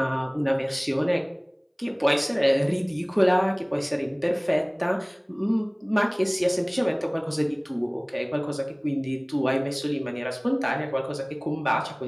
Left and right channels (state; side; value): identical; both; correlation 1.00